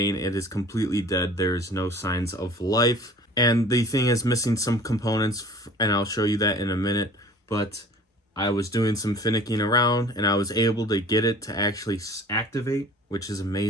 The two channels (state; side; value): normal; both; correlation 0.46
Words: it is completely dead, there is no signs of life, and the thing is missing some components, and I'll show you that in a minute, but I was doing some finicking around and I was able to get it to actually activate, which is